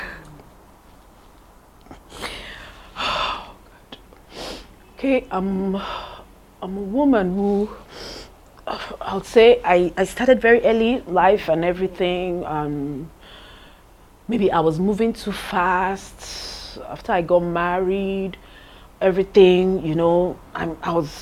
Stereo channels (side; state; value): both; identical; correlation 1.00